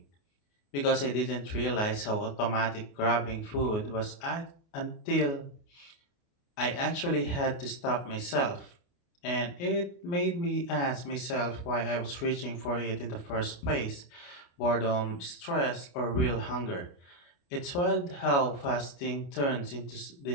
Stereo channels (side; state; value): right; late; 29 ms